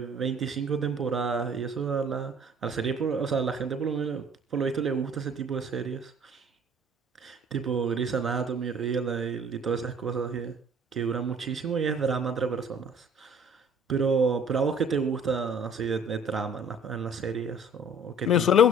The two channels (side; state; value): both; normal; correlation 0.53